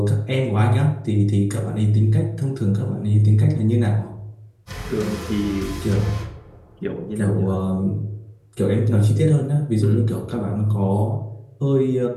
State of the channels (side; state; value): both; identical; correlation 1.00